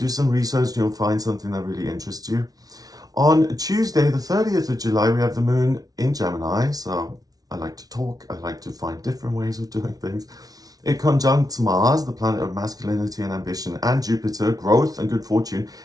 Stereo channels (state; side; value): late; left; 0.18 ms